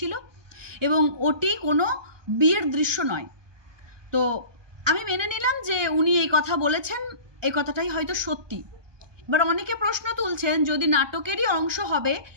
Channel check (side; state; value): left; late; 1.4 ms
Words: এবং ওটি কোনো বিয়ের দৃশ্য নয়। তো আমি মেনে নিলাম যে উনি এই কথা বলেছেন, এই কথাটাই হয়তো সত্যি। এবার অনেকে প্রশ্ন তুলছেন, যদি নাটকেরই অংশ হবে